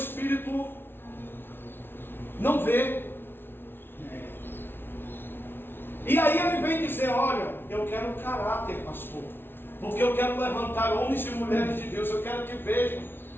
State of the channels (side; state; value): right; late; 0.11 ms